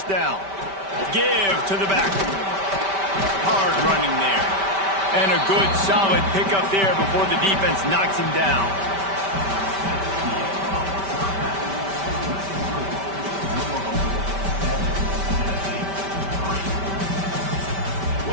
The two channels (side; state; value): left; late; 5.1 ms